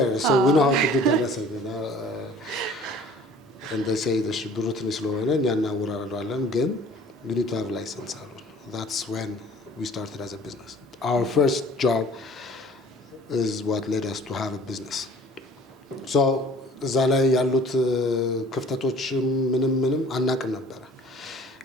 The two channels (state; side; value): normal; both; correlation 0.50